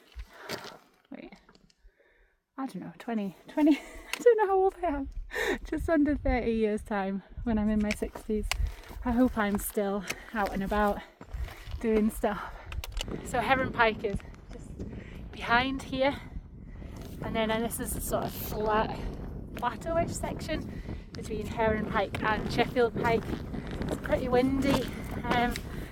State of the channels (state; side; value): identical; both; correlation 1.00